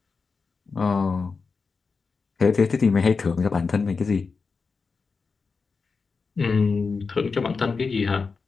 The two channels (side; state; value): right; quieter; 4.8 dB